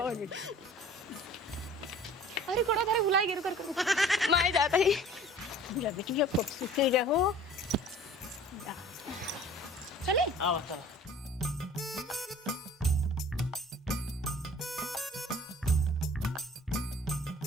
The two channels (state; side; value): normal; both; correlation 0.47